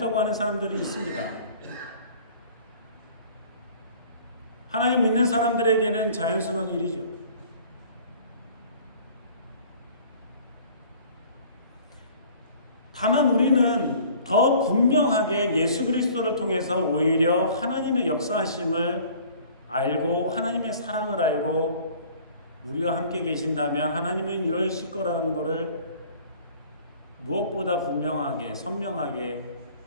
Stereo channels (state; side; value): inverted; both; correlation -0.50